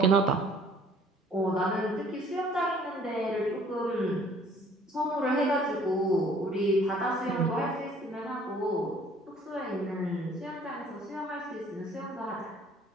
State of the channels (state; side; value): normal; both; correlation 0.56